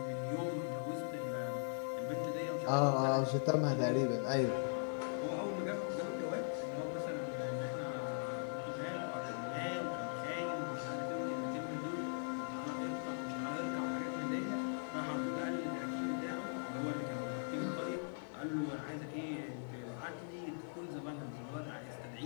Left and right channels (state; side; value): silent; right; digital silence